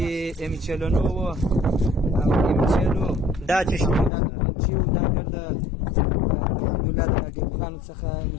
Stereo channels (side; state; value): right; drops out; at 4.1 s